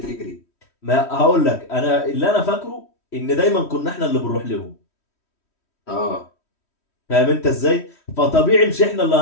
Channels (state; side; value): late; right; 3.1 ms